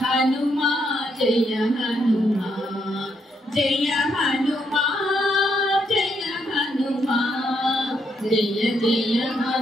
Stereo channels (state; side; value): normal; both; correlation 0.76